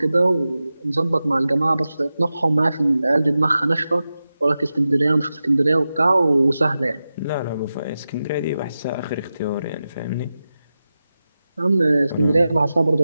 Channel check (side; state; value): both; inverted; correlation -0.93